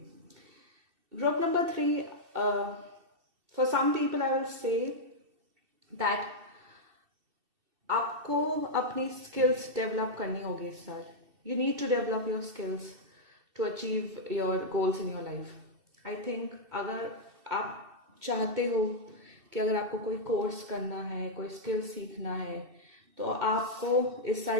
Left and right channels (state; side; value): late; left; 2.7 ms